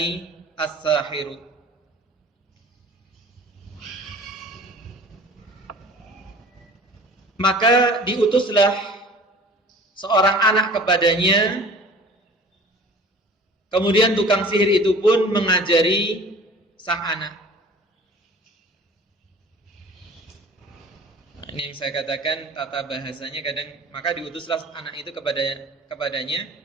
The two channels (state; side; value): normal; both; correlation 0.45